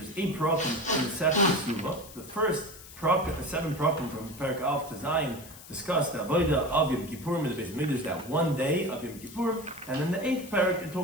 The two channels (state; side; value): noise; left; hiss, 17 dB below the sound